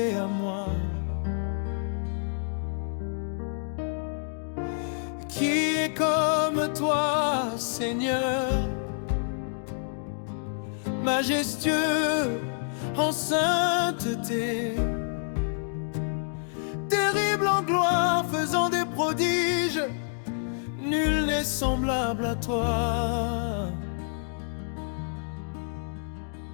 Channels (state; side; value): silent; right; digital silence